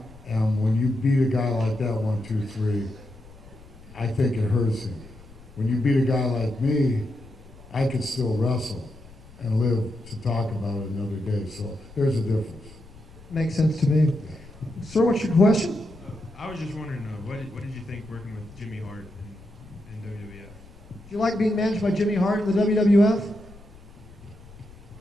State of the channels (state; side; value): noise; left; rumble, 21 dB below the sound